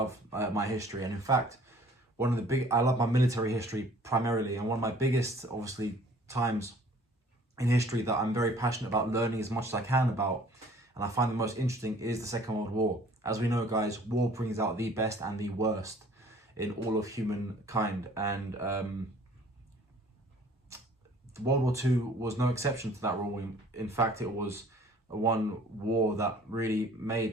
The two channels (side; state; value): both; normal; correlation 0.53